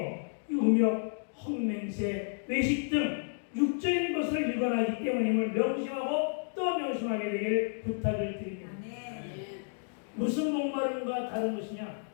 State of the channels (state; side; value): silent; right; digital silence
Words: 음욕, 헛맹세, 외식 등 육적인 것을 일관하기 때문임을 명심하고 또 명심하게 되길 부탁을 드립니다. 무슨 목마름과 다른 것이냐?